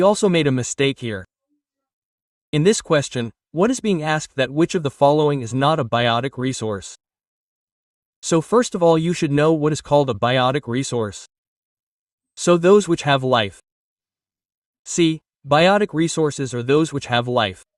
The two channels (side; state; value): both; identical; correlation 1.00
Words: also made a mistake here. In this question, what is being asked that which of the following is not a biotic resource? So first of all you should know what is called a biotic resource. So those which have life. See, biotic resources are those which have life.